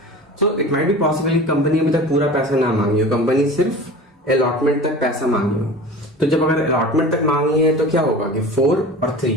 So it might be possible company अभी तक पूरा पैसा ना मांगी हो, कंपनी सिर्फ अलॉटमेंट तक पैसा मांगी हो। तो जब अगर अलॉटमेंट तक मांगी है तो क्या होगा कि 4 और 3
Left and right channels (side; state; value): both; normal; correlation 0.37